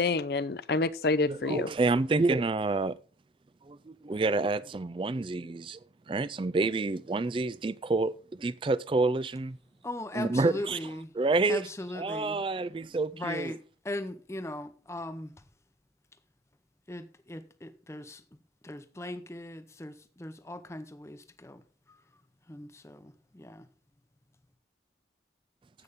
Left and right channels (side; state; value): both; normal; correlation 0.52